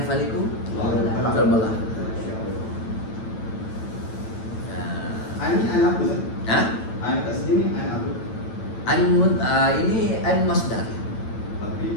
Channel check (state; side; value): late; right; 9.1 ms